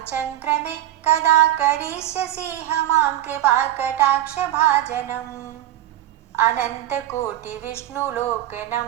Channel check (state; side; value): quieter; left; 13.4 dB